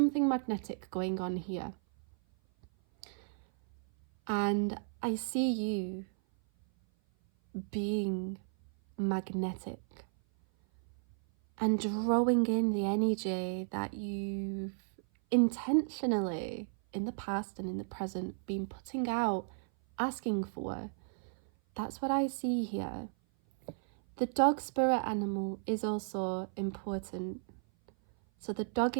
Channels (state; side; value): silent; left; 55 dB below the other